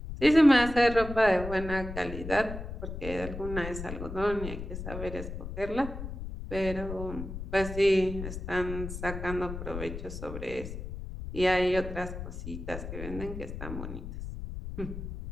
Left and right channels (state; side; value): noise; left; rumble, 8 dB below the sound